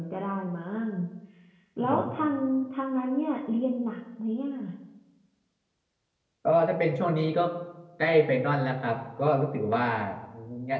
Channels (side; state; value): both; identical; correlation 1.00